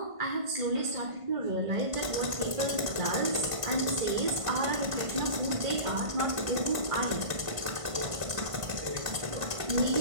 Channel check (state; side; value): late; left; 1.5 ms